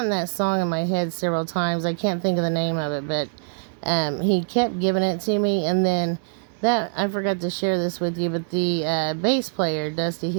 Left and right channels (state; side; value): silent; left; 63 dB below the other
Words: that song in my head several times. I can't think of the name of it, but he kept giving it to me. And then that, I forgot to share this with you, but the bass player, Dusty